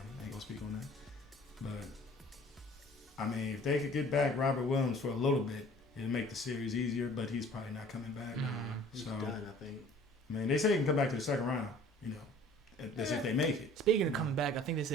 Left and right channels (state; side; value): normal; both; correlation 0.49